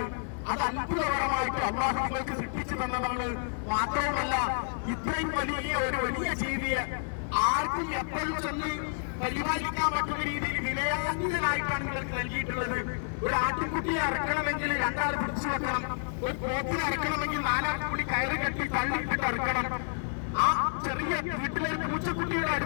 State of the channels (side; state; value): right; silent; digital silence